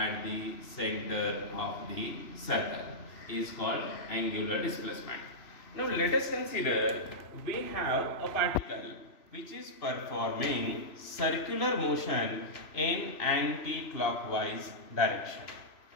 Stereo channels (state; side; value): late; right; 3.0 ms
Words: the center of the circle is called angular displacement. Now let us consider we have a particle which is performing circular motion in anti-clockwise direction.